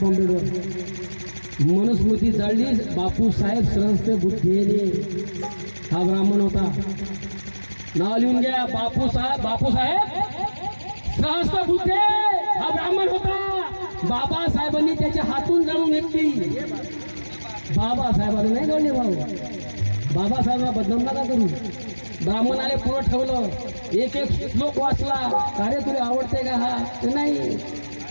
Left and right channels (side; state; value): both; inverted; correlation -1.00